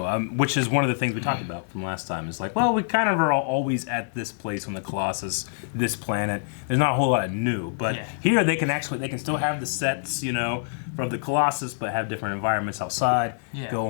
which is one of the things we talked about from last time. It's like, well, we kind of are always at this place on the Colossus, this planet. There's not a whole lot of new, but here they can still have the sets, you know, from the Colossus, but have different environments outside. Go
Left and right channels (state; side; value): silent; right; digital silence